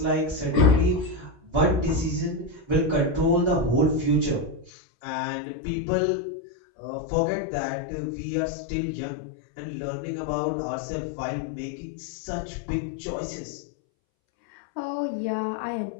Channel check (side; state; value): right; drops out; at 4.7 s